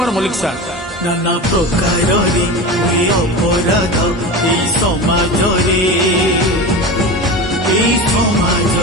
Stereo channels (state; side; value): normal; both; correlation 0.27